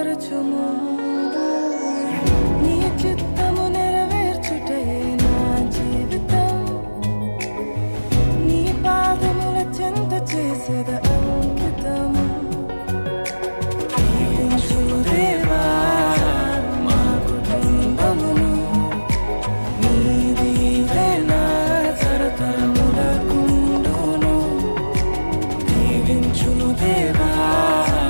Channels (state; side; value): inverted; both; correlation -1.00